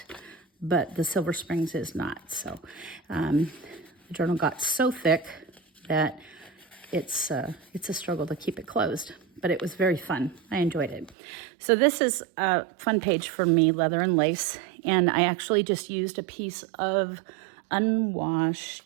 but the Silver Springs is not. So the journal got so thick that it's a struggle to keep it closed, but it was very fun. I enjoyed it. So this is a fun page for me, leather and lace, and I actually just used a piece of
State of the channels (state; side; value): drops out; left; at 11.2 s